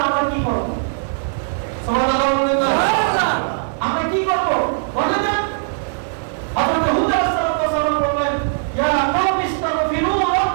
আমরা কি করব? সুবহানাল্লাহ বলেন না, আমরা কি করব বলেন না? হযরত হুদ আলাইহিস সালাম বললেন, ইয়া কওমি ইস্তাগফিরু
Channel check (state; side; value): silent; left; digital silence